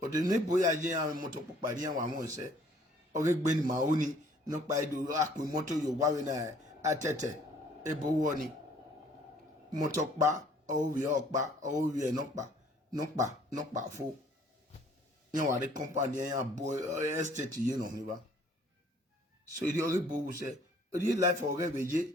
de ne boya je ya me motor popari an wa mo se o ge gbe ni ma oni no pa ido akun motor yo wa we na atete ebo wo ni motor pa o wi opa o wi e no pa fo yan wa de company yan boy estate yin no mi ba so the other boy say the life of reveje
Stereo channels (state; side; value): normal; both; correlation 0.58